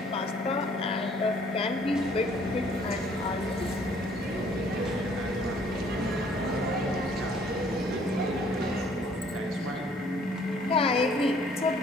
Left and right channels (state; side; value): normal; both; correlation 0.60